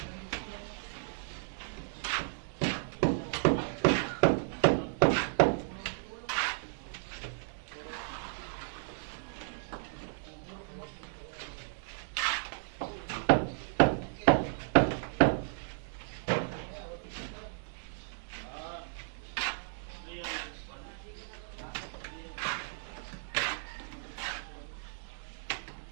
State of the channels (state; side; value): silent; left; digital silence